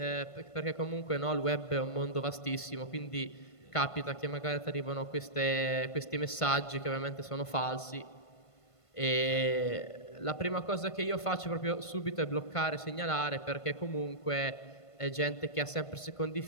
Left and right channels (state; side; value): late; right; 1.5 ms